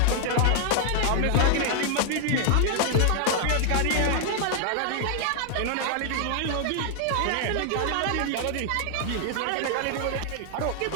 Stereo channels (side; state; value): both; different; correlation 0.00